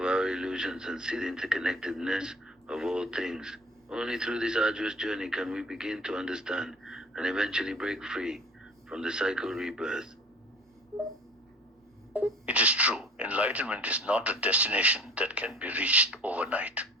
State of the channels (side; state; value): both; normal; correlation 0.46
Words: our illusions and see the interconnectedness of all things. Only through this arduous journey can we begin to understand and eventually break free from the cycle of rebirth. It is true, enlightenment is not a destination that can be reached overnight.